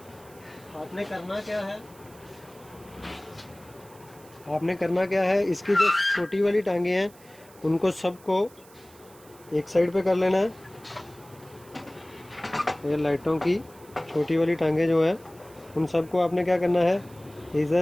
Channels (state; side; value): noise; right; hiss, 25 dB below the sound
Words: आपने करना क्या है, इसकी जो छोटी वाली टांगे हैं उनको सबको एक साइड पे कर लेना है। ये लाइटों की छोटी वाली टांगे जो है, उन सबको आपने क्या करना है,